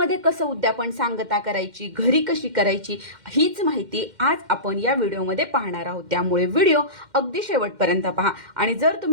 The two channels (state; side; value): late; left; 2.1 ms